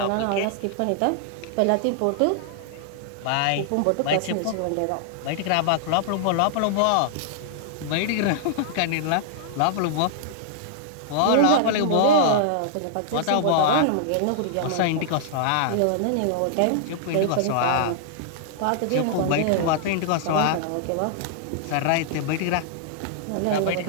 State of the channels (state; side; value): different; both; correlation -0.01